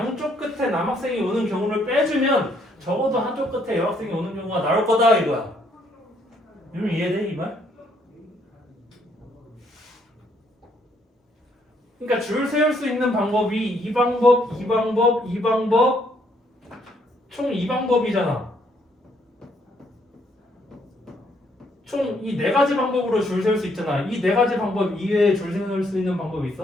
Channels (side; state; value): both; normal; correlation 0.70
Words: 끝에 남학생이 오는 경우를 빼주면 적어도 한쪽 끝에 여학생이 오는 경우가 나올 거다 이거야. 이러면 이해돼 이 말? 그러니까 줄 세울 수 있는 방법이 이 방법, 이 방법, 이 방법 총 2방법이잖아. 총 이 4가지 방법으로 줄 세울 수 있잖아. 이 4가지 방법 이외에 줄 세울 수 있는 방법이